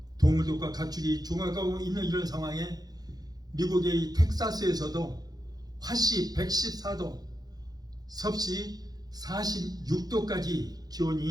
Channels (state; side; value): late; left; 0.19 ms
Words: 동물들과 가축이 죽어가고 있는 이런 상황에 미국의 텍사스에서도 화씨 114도, 섭씨 46도까지